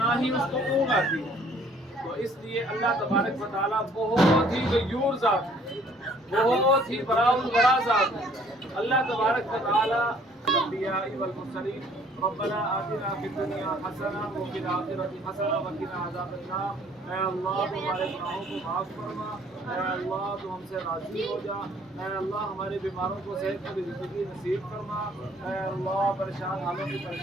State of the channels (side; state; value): both; normal; correlation 0.59